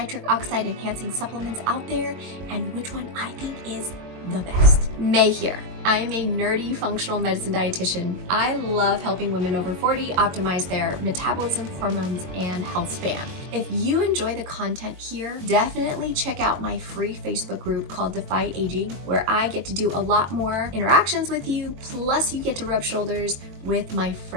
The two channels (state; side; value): late; left; 22 ms